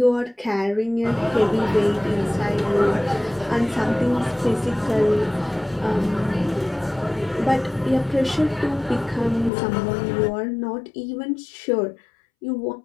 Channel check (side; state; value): right; drops out; at 9.5 s